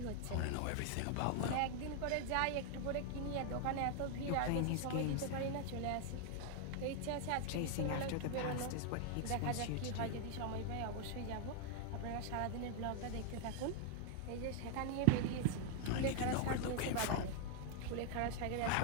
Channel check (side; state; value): both; different; correlation 0.00